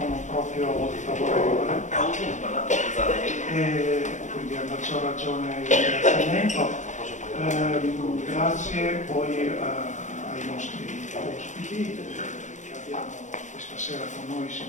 non proprio favorevole, e quindi a maggior ragione il ringraziamento. Grazie poi ai nostri ospiti che abbiamo questa sera con noi,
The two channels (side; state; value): right; late; 0.35 ms